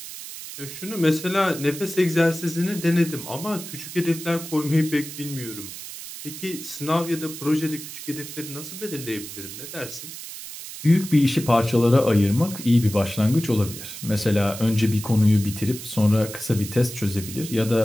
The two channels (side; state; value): right; noise; hiss, 11 dB below the sound